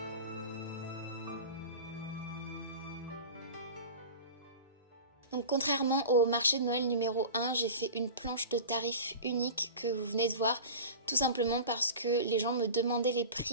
Donc contrairement au marché de Noël numéro 1, j'ai fait une planche de tarifs unique que vous venez de voir, tout simplement parce que les gens me demandaient les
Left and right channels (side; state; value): both; inverted; correlation -0.33